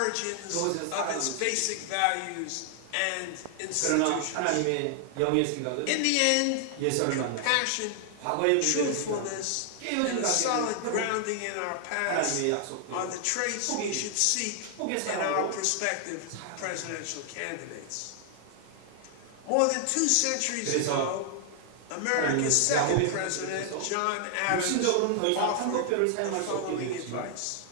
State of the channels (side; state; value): both; different; correlation 0.00